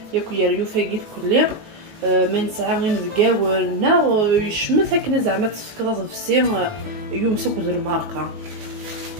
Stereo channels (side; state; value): left; late; 19 ms